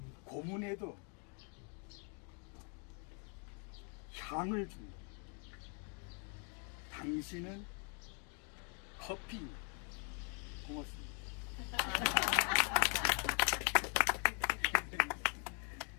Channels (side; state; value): right; quieter; 38.8 dB